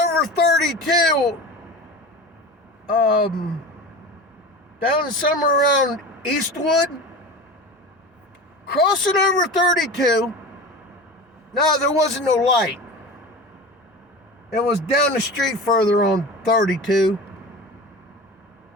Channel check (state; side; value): normal; both; correlation 0.32